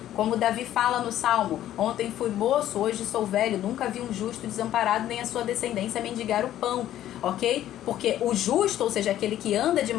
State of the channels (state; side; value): quieter; right; 12.4 dB